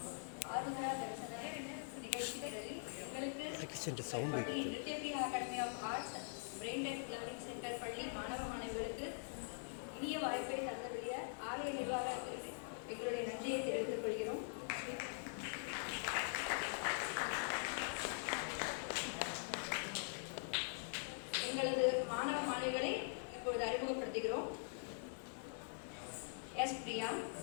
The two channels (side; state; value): right; silent; digital silence